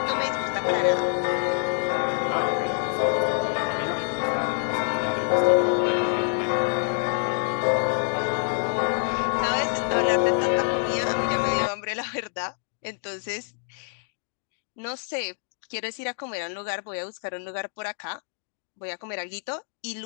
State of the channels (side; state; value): right; silent; 61 dB below the other